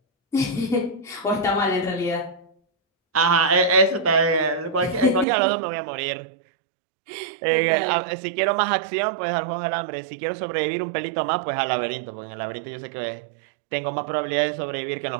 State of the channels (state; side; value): drops out; left; at 5.2 s